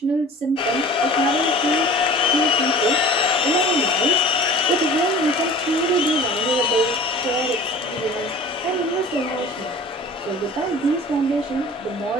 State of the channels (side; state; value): both; normal; correlation 0.42